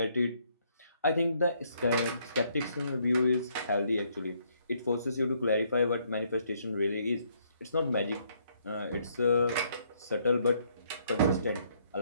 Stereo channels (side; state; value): both; inverted; correlation -0.69